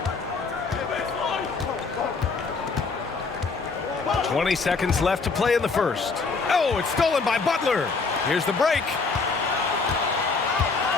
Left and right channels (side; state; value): right; quieter; 4.4 dB